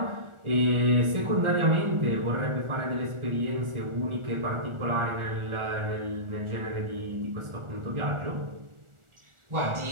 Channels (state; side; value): late; left; 1.4 ms